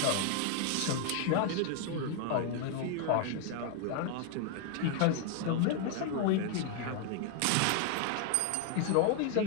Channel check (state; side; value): different; both; correlation 0.00